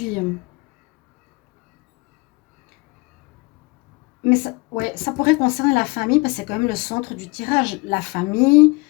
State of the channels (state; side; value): quieter; right; 26.7 dB